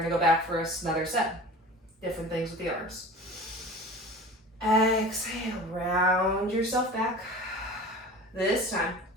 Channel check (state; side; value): normal; both; correlation 0.38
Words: go back for another set. Different things with the arms. Exhale, round yourself back. This time,